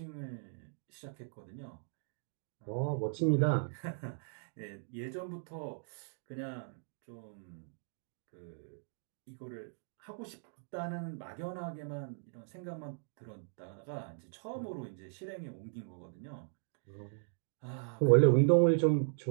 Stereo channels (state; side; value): silent; left; digital silence